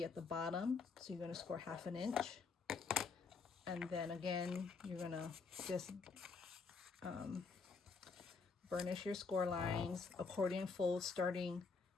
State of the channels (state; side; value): quieter; right; 4.8 dB